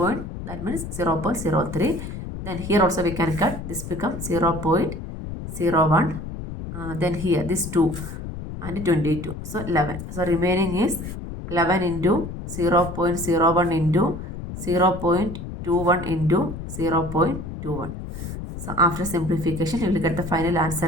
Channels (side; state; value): left; noise; rumble, 8 dB below the sound